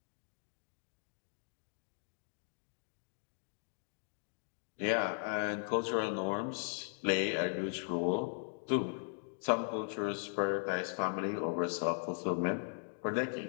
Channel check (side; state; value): right; silent; 52 dB below the other